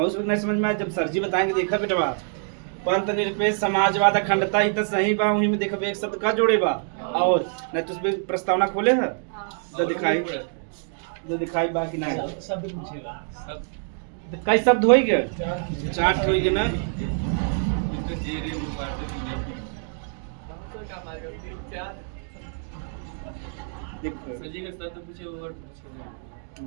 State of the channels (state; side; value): silent; left; 57 dB below the other